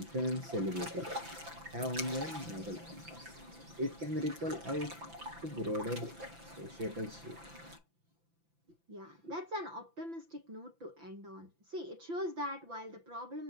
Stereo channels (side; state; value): left; late; 5.9 ms